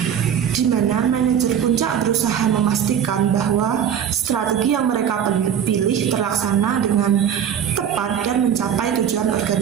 di mana manajer puncak berusaha memastikan bahwa strategi yang mereka pilih terlaksana dengan tepat dan mencapai tujuan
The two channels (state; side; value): quieter; left; 8.8 dB